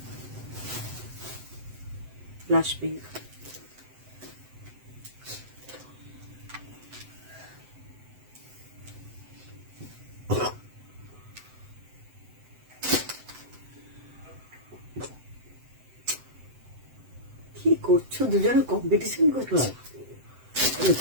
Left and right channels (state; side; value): late; left; 7.8 ms